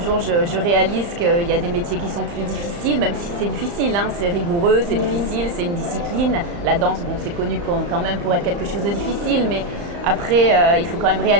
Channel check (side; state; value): left; late; 35 ms